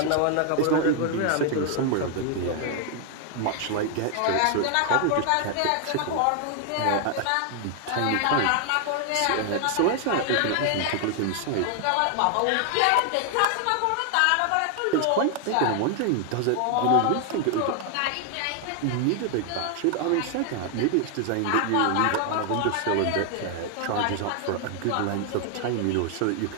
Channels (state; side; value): different; both; correlation 0.00